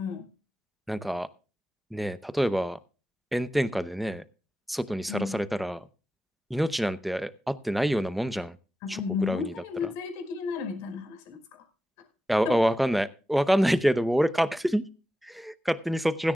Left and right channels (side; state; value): both; normal; correlation 0.93